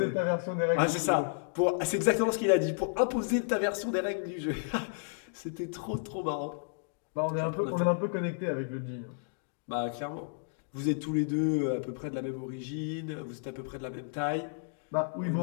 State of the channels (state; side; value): silent; right; digital silence